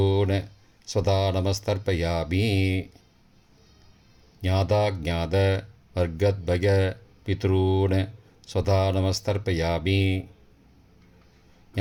சதா நமஸ்தர்ப்பயாமி. ஞாதா ஜாத வர்க்கத்வய பித்ரூன் சதா நமஸ்தர்ப்பயாமி.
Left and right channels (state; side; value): identical; both; correlation 1.00